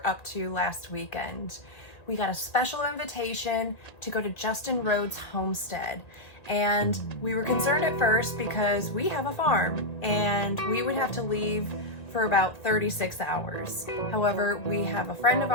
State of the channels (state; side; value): late; right; 1.9 ms